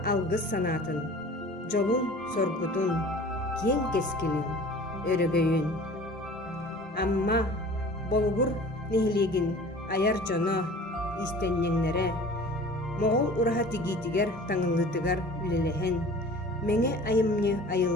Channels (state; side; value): normal; both; correlation 0.44